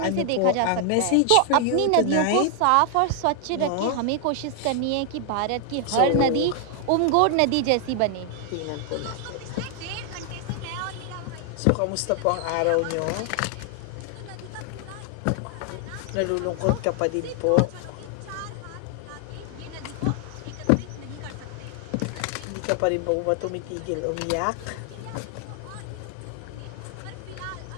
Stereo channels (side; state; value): both; different; correlation 0.00